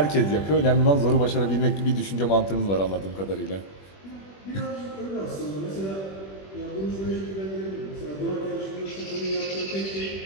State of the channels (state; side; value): late; right; 21 ms